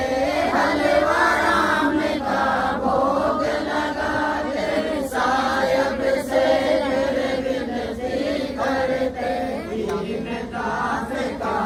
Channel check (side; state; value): both; identical; correlation 1.00